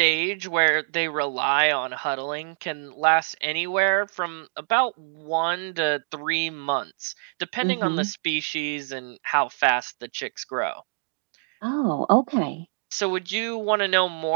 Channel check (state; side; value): silent; left; digital silence